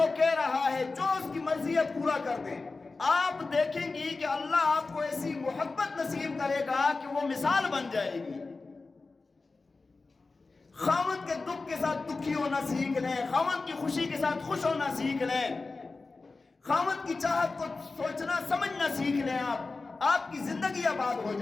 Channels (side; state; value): right; quieter; 3.8 dB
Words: کہہ رہا ہے، جو اس کی مرضی ہے پورا کر دیں. آپ دیکھیں گی کہ اللہ آپ کو ایسی محبت نصیب کرے گا کہ وہ مثال بن جائے گی. خامن کے دکھ کے ساتھ دکھی ہونا سیکھ لیں، خامن کی خوشی کے ساتھ خوش ہونا سیکھ لیں، خامن کی چاہت کو سوچنا سمجھنا سیکھ لیں. آپ کی زندگی آباد ہو